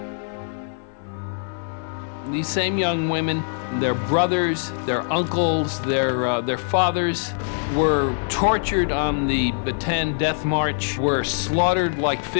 These same young women, their brothers, their uncles, their fathers were tortured on the Bataan Death March, were slaughtered like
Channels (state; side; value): silent; right; 63 dB below the other